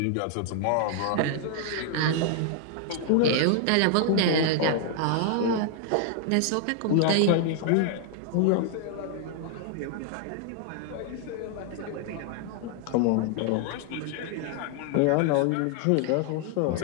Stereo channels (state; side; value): different; both; correlation 0.00